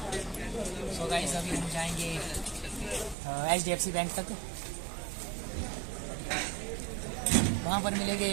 सो गाइस अभी हम जाएंगे HDFC बैंक तक। वहाँ पर मिलेंगे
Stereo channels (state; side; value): drops out; left; at 3.2 s